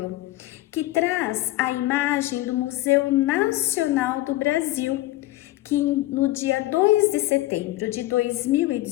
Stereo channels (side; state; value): right; quieter; 16.7 dB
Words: que traz a imagem do Museu Nacional do Brasil, que no dia 2 de setembro de